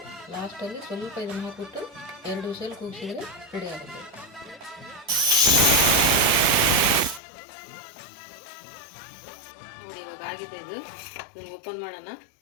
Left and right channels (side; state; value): right; drops out; at 7.2 s